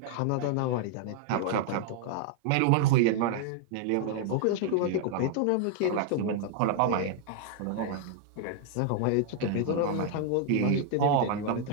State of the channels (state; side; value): different; both; correlation 0.00